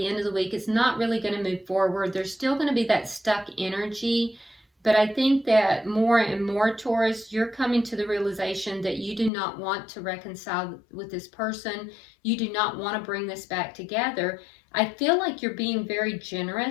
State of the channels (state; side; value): drops out; right; at 9.3 s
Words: end of the week is not really going to move forward. There's still going to be that stuck energy. But I think that more and more, Taurus, you're coming to the realization that you do not want to reconcile with this person. You do not want to bring this back together. I feel like you're being very